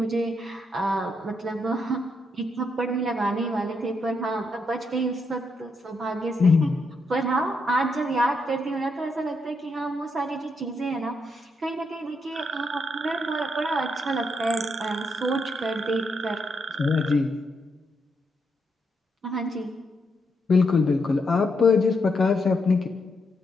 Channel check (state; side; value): normal; both; correlation 0.79